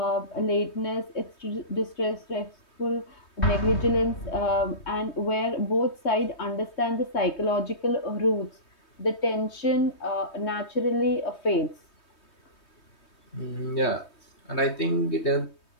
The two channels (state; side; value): late; right; 3.2 ms